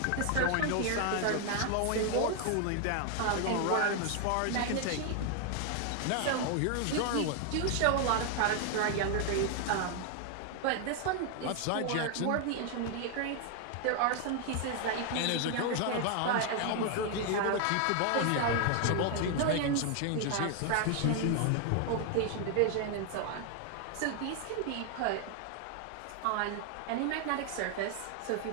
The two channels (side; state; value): both; different; correlation 0.00